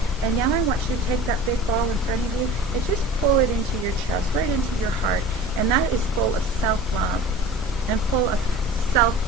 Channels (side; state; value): both; normal; correlation 0.40